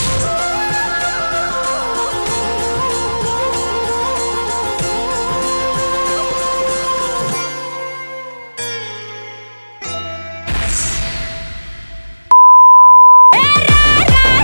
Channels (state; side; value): inverted; both; correlation -1.00